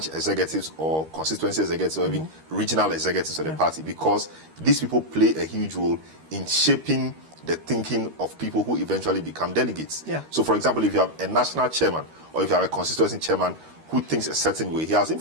executives or constituency executives or even regional executives of the party, because these people play a huge role in shaping the thinking of people who eventually become delegates. So, for example, if you have a national chairman or if you have a constituency chairman who thinks a certain way, he has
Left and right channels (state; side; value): late; left; 13 ms